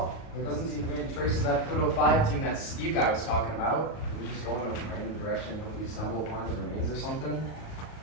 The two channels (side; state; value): right; late; 38 ms